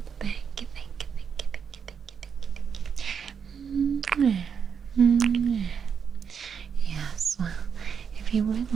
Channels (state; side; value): quieter; left; 6.9 dB